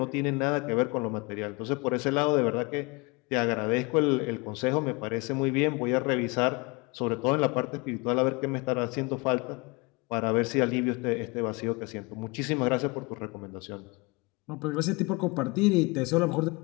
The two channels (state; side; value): quieter; right; 27.1 dB